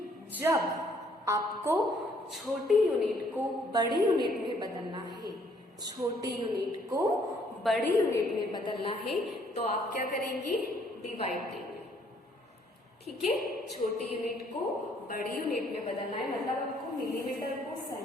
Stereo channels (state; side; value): normal; both; correlation 0.65